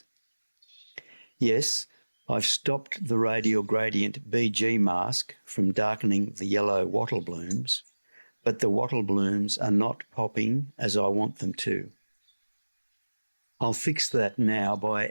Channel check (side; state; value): both; inverted; correlation -1.00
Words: Yes, I've stopped the radial gradient BG mask from darkening the yellow wattle blooms, but the wattle blooms are not popping as I want them to. I'll fix that now by